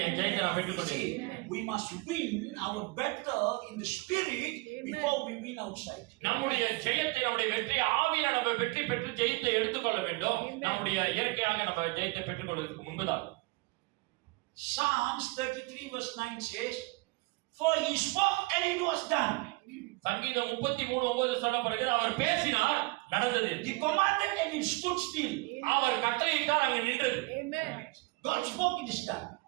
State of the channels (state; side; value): quieter; left; 24.9 dB